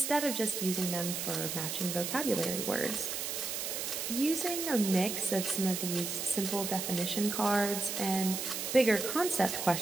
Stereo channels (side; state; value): right; noise; hiss, 3 dB below the sound